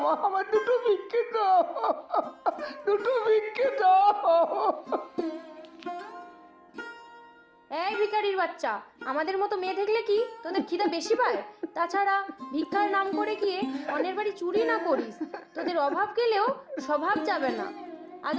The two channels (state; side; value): identical; both; correlation 1.00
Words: মা, আমার দুটো ভিক্ষে দাও, দুটো ভিক্ষে দাও। এই ভিখারির বাচ্চা, আমাদের মতো মেয়ে দেখলে কি তোদের খিদে বেশি পায়? তাছাড়া ভিক্ষার নাম করে গিয়ে অন্যের বাড়ি চুরি না করিস, তোদের অভাব গেলেও স্বভাব যাবে না। আজ